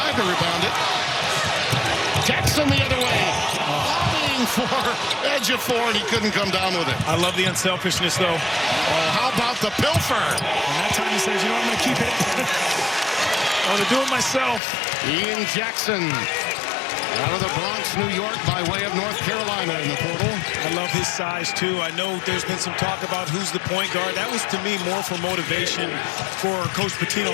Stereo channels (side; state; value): right; drops out; at 14.6 s